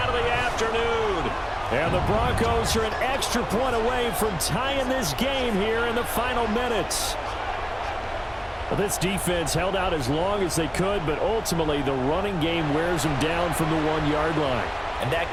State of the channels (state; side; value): identical; both; correlation 1.00